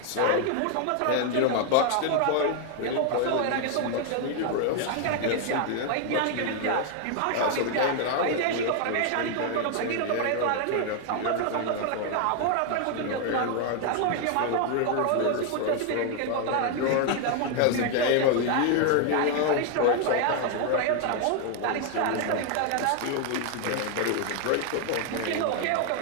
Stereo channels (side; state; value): both; different; correlation 0.00